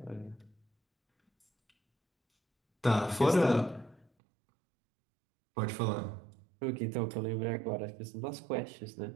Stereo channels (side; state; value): left; drops out; at 4.0 s